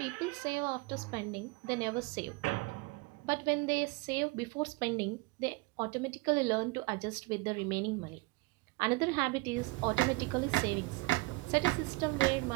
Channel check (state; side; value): quieter; left; 23.1 dB